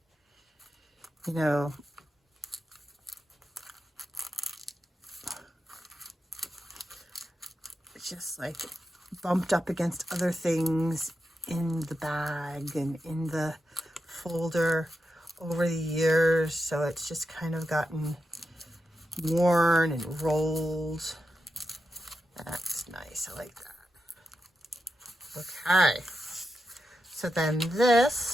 you know, just like bumped up against other things in the bag and in the folder over the years, so it's just kind of gotten worn and rolled. That's nice. I like that. Okay, so then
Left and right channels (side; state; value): both; normal; correlation 0.88